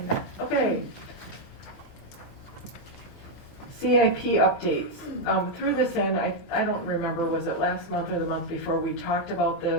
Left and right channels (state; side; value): normal; both; correlation 0.00